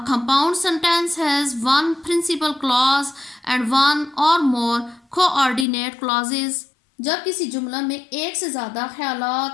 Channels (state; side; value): drops out; right; at 5.7 s